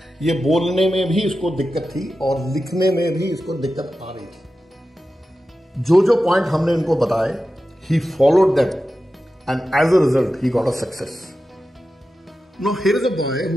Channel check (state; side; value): normal; both; correlation 0.92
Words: ये बोलने में भी इसको दिक्कत थी और लिखने में भी इसको दिक्कत आ रही थी. जो पॉइंट हमने इनको बताए, he followed them and as a result he got a success. Now here is a boy